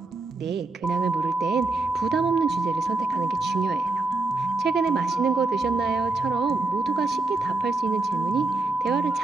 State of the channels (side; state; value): left; quieter; 3.3 dB